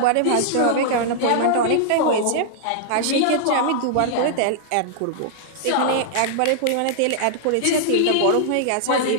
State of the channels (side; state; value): both; different; correlation -0.01